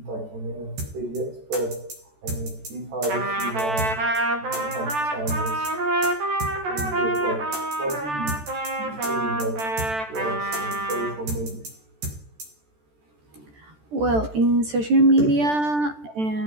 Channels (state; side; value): late; left; 14 ms